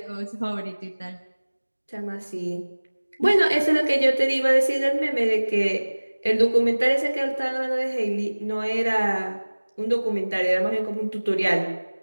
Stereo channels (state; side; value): inverted; both; correlation -1.00